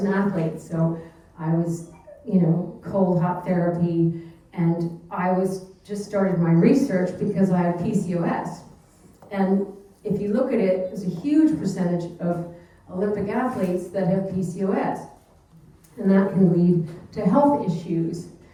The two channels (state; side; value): identical; both; correlation 1.00